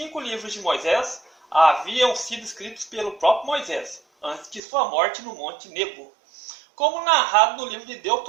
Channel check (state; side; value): drops out; left; at 4.6 s